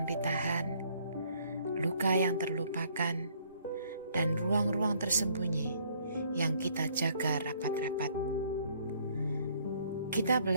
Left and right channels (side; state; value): both; inverted; correlation -0.63